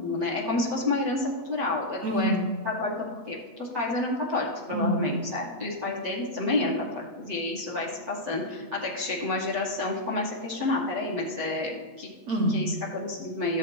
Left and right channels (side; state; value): left; late; 7.8 ms